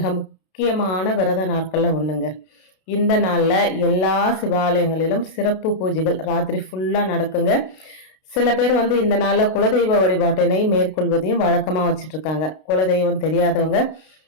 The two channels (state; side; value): late; right; 32 ms